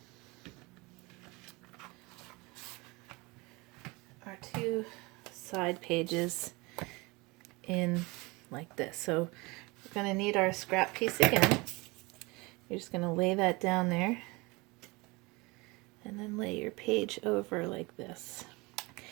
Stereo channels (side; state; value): left; quieter; 24.8 dB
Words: our two side pages in like this. So we're going to need our scrap piece again. You're just going to lay that down there and then lay your page over like this.